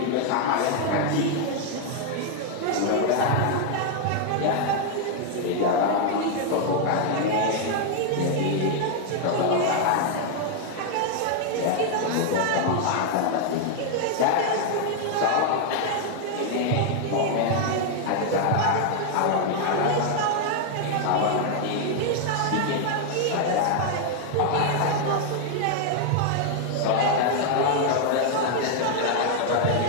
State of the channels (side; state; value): both; different; correlation 0.00